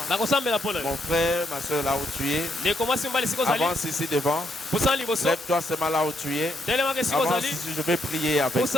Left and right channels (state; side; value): normal; both; correlation 0.76